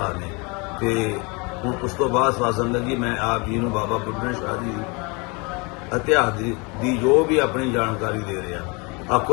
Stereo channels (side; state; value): right; quieter; 29.5 dB